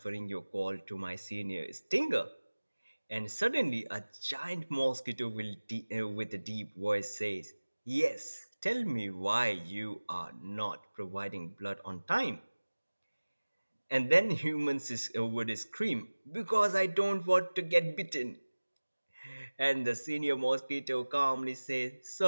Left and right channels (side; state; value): both; inverted; correlation -1.00